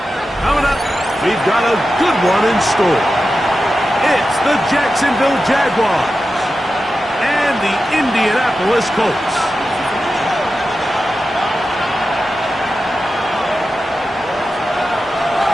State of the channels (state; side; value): normal; both; correlation 0.92